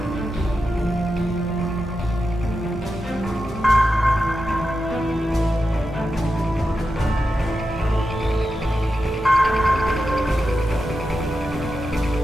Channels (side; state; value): both; normal; correlation 0.89